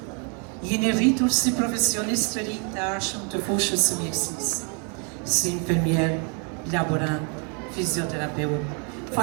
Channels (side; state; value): left; quieter; 38.1 dB